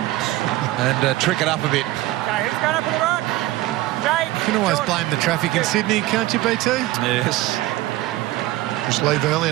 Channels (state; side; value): quieter; left; 16.8 dB